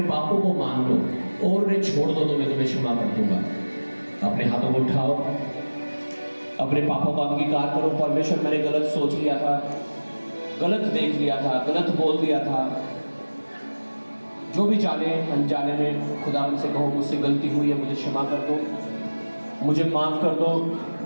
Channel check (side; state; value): both; inverted; correlation -1.00